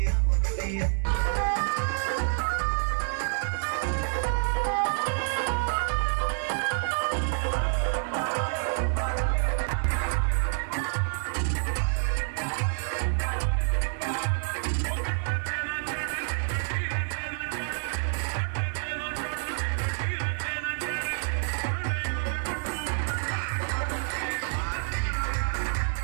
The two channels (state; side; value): silent; left; 59 dB below the other